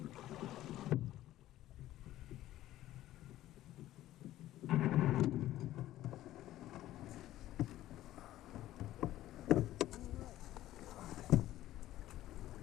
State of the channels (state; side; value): quieter; right; 14.3 dB